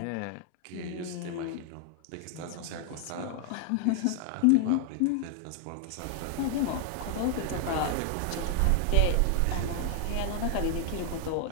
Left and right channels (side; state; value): both; different; correlation 0.00